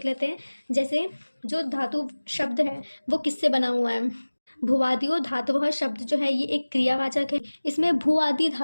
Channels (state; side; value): inverted; both; correlation -1.00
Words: लेते हैं। जैसे जो धातु शब्द है वो किससे बना हुआ है। भुवादियो धातुवः शब्द जो है ये एक क्रियावाचक है। इसमें भू आदि